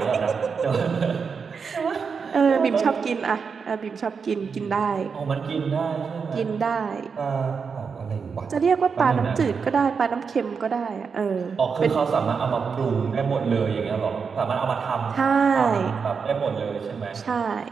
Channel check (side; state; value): left; quieter; 5.7 dB